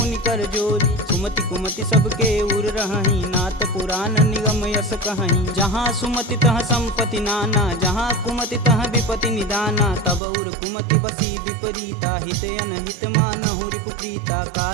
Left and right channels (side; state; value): left; drops out; at 10.2 s